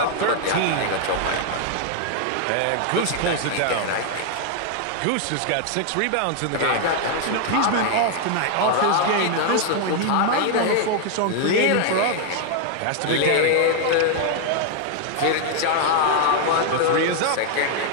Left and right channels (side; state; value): both; different; correlation 0.00